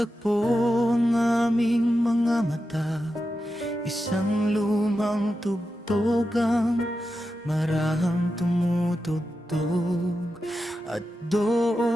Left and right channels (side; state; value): both; normal; correlation 0.90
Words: ang aming mga mata, isang lumang tugtog ang marahang tumutugtog. At